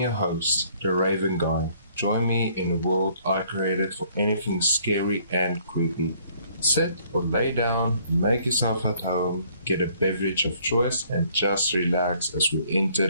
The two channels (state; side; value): inverted; both; correlation -0.62